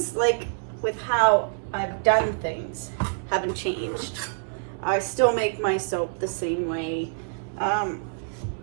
like with how I've done things haven't changed. I still make my soap the same way,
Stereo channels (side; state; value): left; silent; digital silence